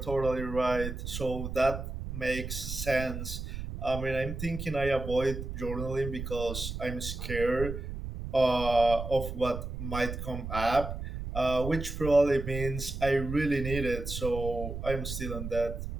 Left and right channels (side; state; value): right; noise; rumble, 6 dB below the sound